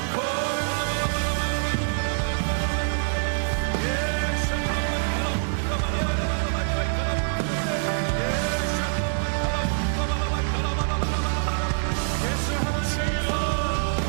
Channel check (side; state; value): left; silent; digital silence